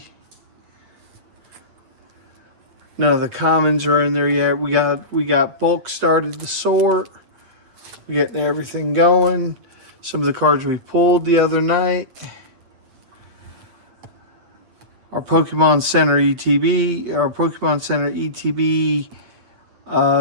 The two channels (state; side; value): late; left; 8.6 ms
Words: None of the commons are in there yet. We got bulk started to sort. We're getting everything going. Some of the cards we pulled the other night. Our Pokemon Center ETB